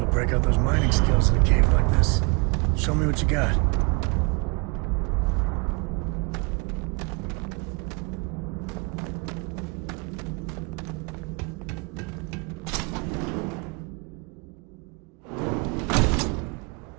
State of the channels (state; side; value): quieter; left; 31.0 dB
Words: to break out those mining skills in a cave like this. Show me what you got.